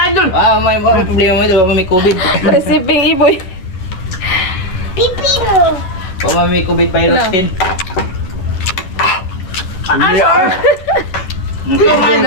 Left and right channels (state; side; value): late; right; 11 ms